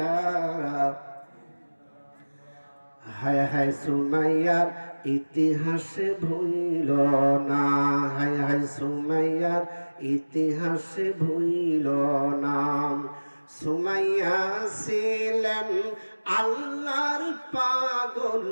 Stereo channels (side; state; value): both; inverted; correlation -1.00